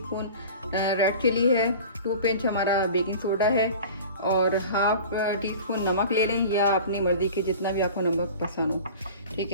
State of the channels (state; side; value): inverted; both; correlation -0.39